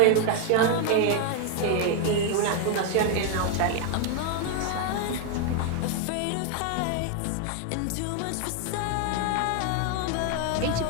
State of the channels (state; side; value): different; both; correlation 0.00